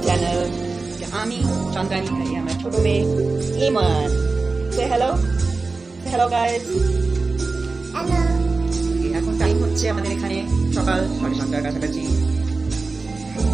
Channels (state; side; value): quieter; left; 3.8 dB